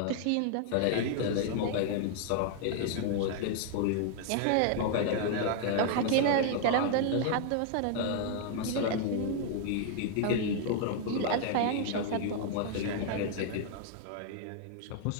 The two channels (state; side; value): different; both; correlation 0.00